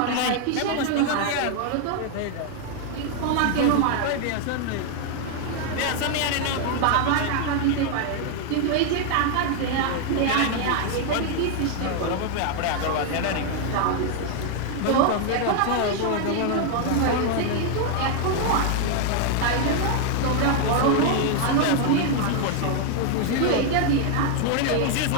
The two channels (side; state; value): both; different; correlation 0.00